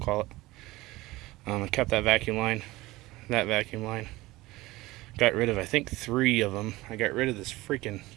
it. I kept that vacuum line. Got rid of, I think, 3 of them. I got rid of this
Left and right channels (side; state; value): left; quieter; 19.3 dB